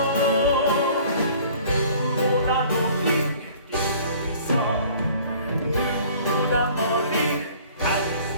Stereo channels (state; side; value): inverted; both; correlation -0.51